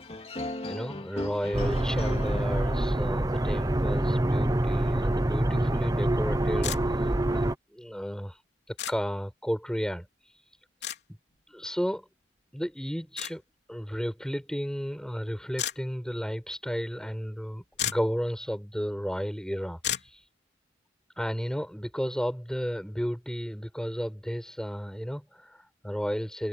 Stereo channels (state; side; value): normal; both; correlation 0.89